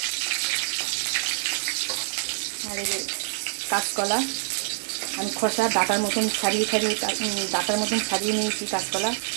আর এই যে কাঁচকলা, আমি খোসা ডাটার মতন ছাড়িয়ে নিয়েছি। কাঁচকলা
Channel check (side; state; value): left; silent; digital silence